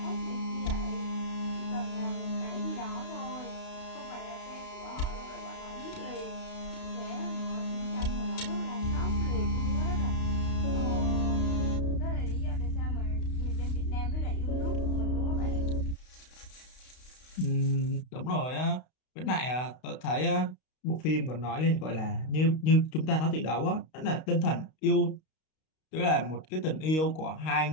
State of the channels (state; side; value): late; right; 32 ms